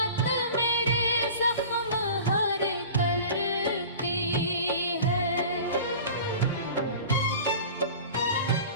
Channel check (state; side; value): inverted; both; correlation -0.39